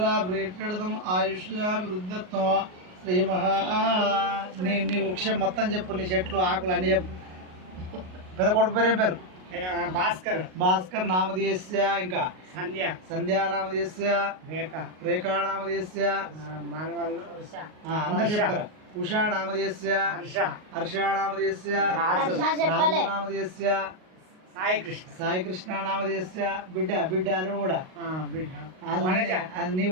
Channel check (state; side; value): late; left; 38 ms